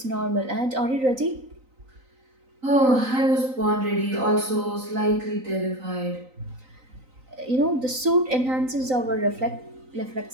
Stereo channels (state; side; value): late; left; 3.9 ms